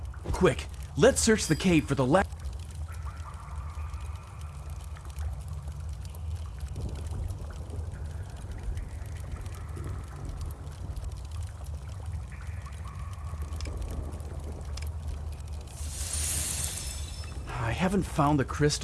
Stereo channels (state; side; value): identical; both; correlation 1.00